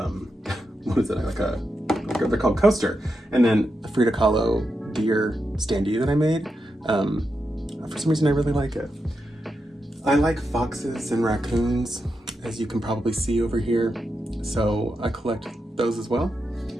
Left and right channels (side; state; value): both; normal; correlation 0.87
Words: what is it? They're called Coaster. And then a Frida Kahlo deer standee that I made. For some reason I really like it. I like foxes and raccoons, as you can probably see over here. So I collect those as well.